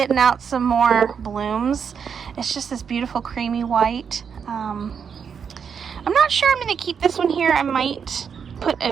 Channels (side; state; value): left; quieter; 6.9 dB